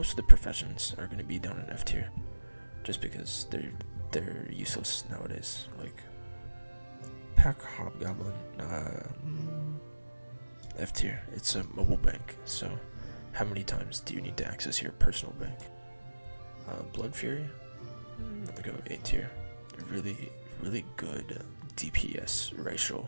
of the professions are going to be down in F tier, just because they're useless nowadays. Like Pack Hobgoblin, F tier. It's a mobile bank. So how many times do you need to access your personal bank? Blood Fury. Let me go A tier. Really good DPS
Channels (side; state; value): both; inverted; correlation -1.00